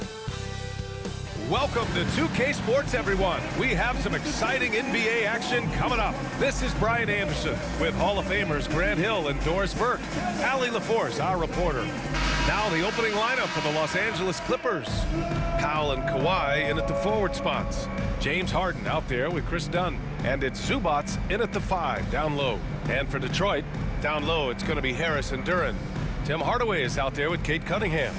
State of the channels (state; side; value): identical; both; correlation 1.00